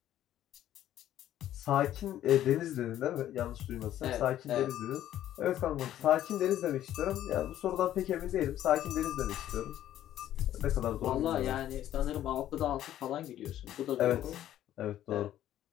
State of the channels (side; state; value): right; quieter; 12.2 dB